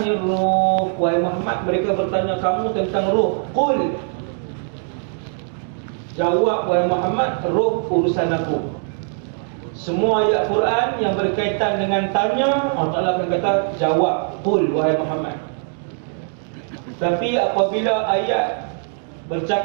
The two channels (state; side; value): silent; left; 57 dB below the other